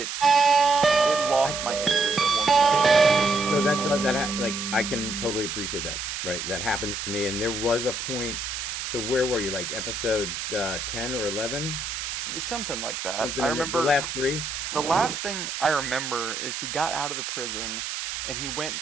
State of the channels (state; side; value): noise; right; hiss, 5 dB below the sound